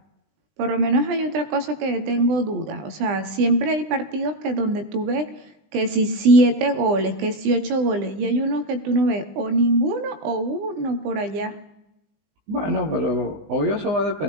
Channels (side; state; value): left; late; 20 ms